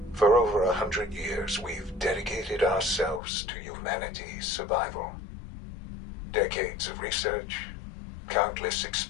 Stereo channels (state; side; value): drops out; right; at 3.2 s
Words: For over 100 years, we've dedicated ourselves to humanity's survival. Decades of research, countless